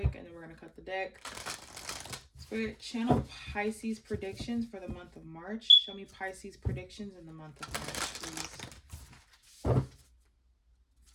and then we're gonna cut the deck. Spirit, channel Pisces predictions for the month of March. Show me Pisces predictions in the month of March, please.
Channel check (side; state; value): both; identical; correlation 1.00